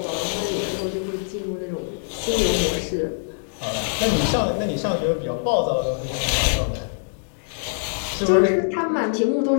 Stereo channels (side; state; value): right; silent; digital silence